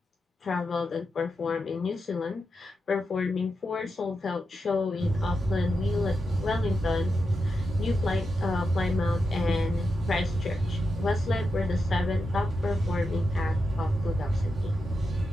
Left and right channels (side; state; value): both; normal; correlation 0.87